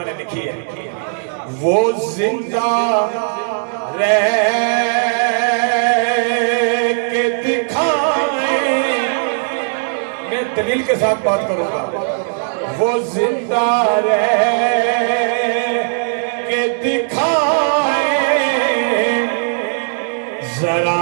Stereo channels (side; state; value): left; silent; digital silence